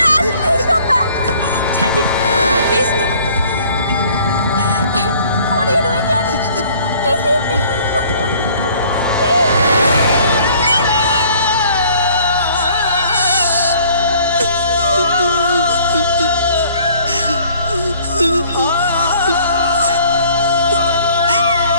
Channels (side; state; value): both; inverted; correlation -0.55